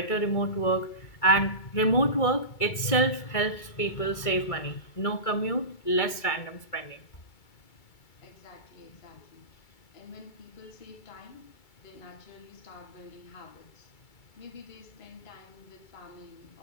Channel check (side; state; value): right; late; 2.3 ms